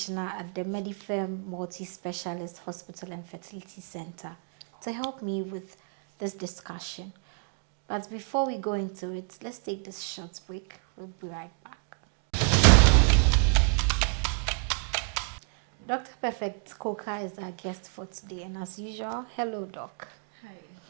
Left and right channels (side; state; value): left; quieter; 36.6 dB